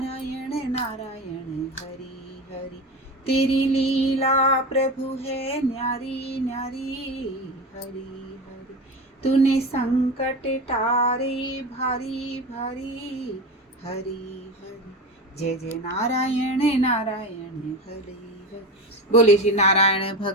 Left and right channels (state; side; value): normal; both; correlation 0.25